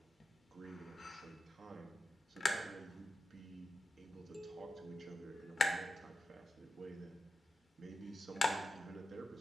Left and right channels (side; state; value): both; normal; correlation 0.91